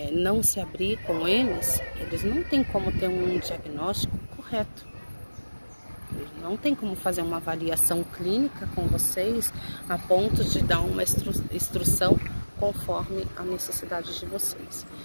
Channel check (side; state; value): both; inverted; correlation -1.00